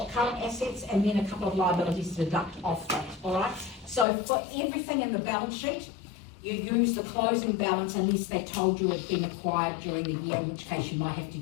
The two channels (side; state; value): right; drops out; at 4.0 s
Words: current assets, and then a couple of liabilities to deduct off that, all right? So for everything in the balance sheet, you use the closing balance unless they told you it's been acquired during the year, in which case you might have to